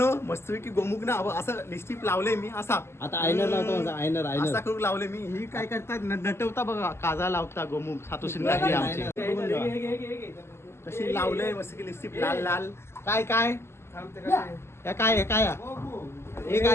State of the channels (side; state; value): right; late; 0.12 ms